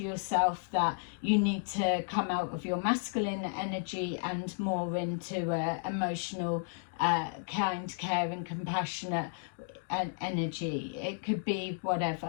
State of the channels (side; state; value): right; silent; digital silence